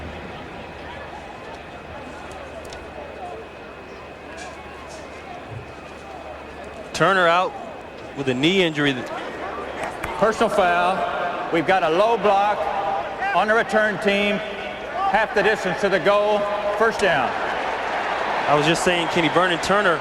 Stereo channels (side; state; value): both; identical; correlation 1.00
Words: Turner out with a knee injury. Personal foul. We've got a low block on the return team. Half the distance to the goal. First down. I was just saying, Kenny, Vernon Turner,